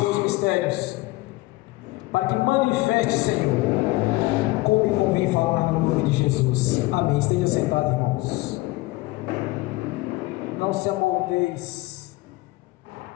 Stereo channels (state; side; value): quieter; right; 20.5 dB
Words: mistérios, para que manifeste, Senhor, como me convém falar no nome de Jesus. Amém. Esteja sentado, irmãos. Não se amoldeis